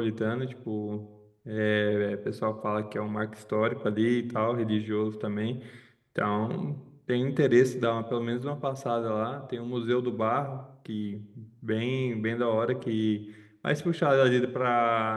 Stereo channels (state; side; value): identical; both; correlation 1.00